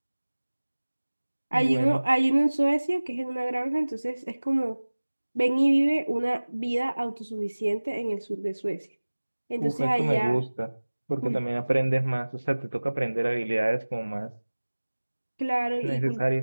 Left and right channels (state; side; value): inverted; both; correlation -1.00